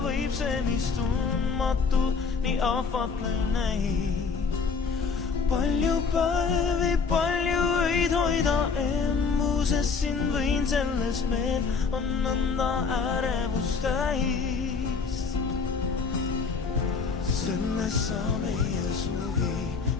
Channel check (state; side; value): quieter; right; 5.2 dB